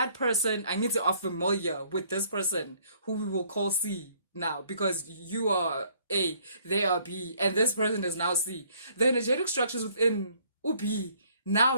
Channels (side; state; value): both; inverted; correlation -0.62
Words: person, I need to are familiar with this person who we will call C now, because you are A, they are B, and this person is now C. The energetic structures within B